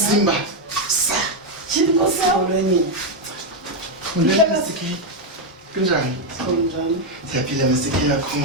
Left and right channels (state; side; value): normal; both; correlation 0.03